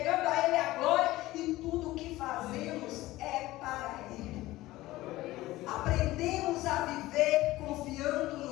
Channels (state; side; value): quieter; right; 17.5 dB